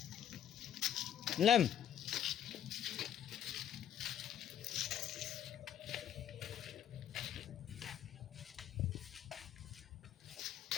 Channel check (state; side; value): quieter; right; 10.1 dB